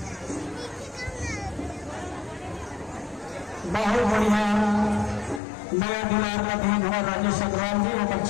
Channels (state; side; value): drops out; right; at 5.4 s